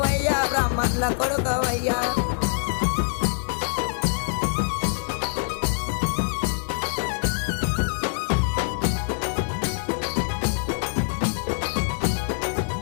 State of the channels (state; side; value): silent; right; digital silence